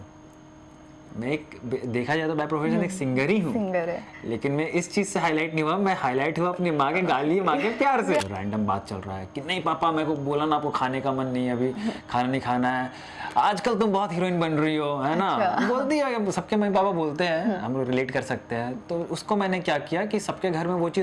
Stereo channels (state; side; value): identical; both; correlation 1.00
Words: मैं एक देखा जाए तो बाय प्रोफेशन एक सिंगर ही हूँ, सिंगर है। लेकिन मैं इस चीज़ से हाईलाइट नहीं हुआ। मैं हाईलाइट हुआ अपनी माँ के गाली, माँ के प्यार से। रैंडम बात चल रहा है कि नहीं पापा मेरे को बोला ना, आपको खाने का मन नहीं है, अभी खाना नहीं खाना है, आजकल तुम बहुत हीरोइन बन रही हो, है ना। अच्छा। बोलती है, सबके मम्मी पापा बोलते हैं, हम लोग रिलेट कर सकते हैं। तो उसको मैंने क्या किया कि सबके घर में वो